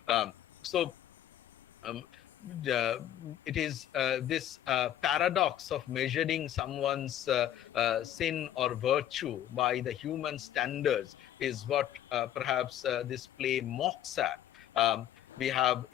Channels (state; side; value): quieter; right; 11.4 dB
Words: So um, it is this paradox of measuring someone's sin or virtue by the human standards is what perhaps this play mocks at. We have